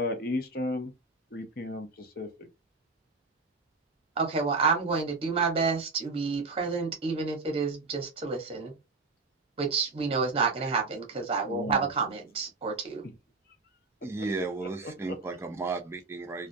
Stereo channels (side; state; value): left; quieter; 3.7 dB